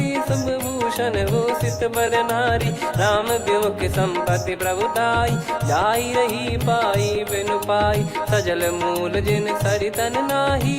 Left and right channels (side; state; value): both; identical; correlation 1.00